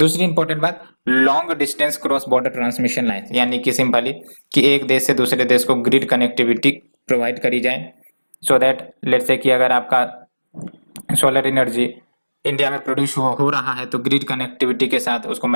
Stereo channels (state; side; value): inverted; both; correlation -1.00